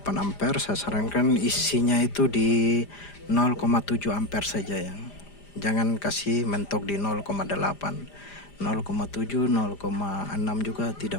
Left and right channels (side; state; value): right; late; 5.0 ms